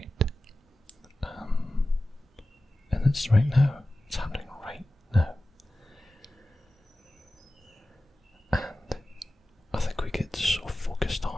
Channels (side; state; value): both; normal; correlation 0.95